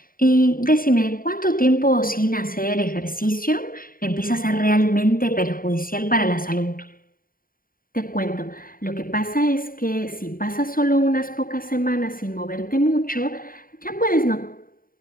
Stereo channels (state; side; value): late; right; 0.41 ms